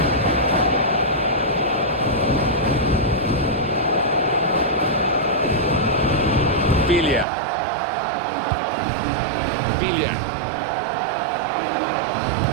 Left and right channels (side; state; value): left; drops out; at 7.2 s